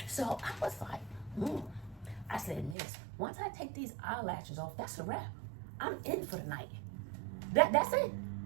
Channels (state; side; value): drops out; left; at 2.8 s